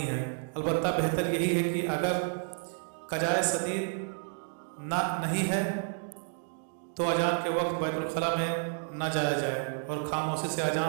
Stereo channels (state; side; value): silent; left; digital silence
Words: है। अलबत्ता बेहतर यही है कि अगर कजाए सदीद नहीं है तो अजान के वक्त बैतुल खला में न जाया जाए और खामोशी से